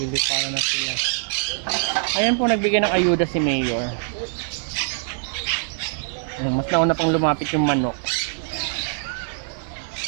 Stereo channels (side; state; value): left; silent; digital silence